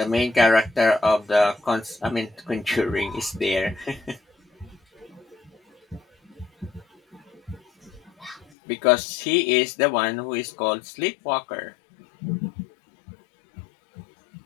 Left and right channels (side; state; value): right; drops out; at 8.5 s